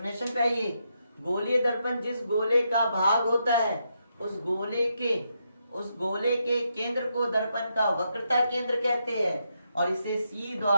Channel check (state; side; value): inverted; both; correlation -0.81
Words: पे आइए। गोलीय दर्पण जिस गोले का भाग होता है उस गोले के केंद्र को दर्पण का वक्रता केंद्र कहते हैं और इसे सी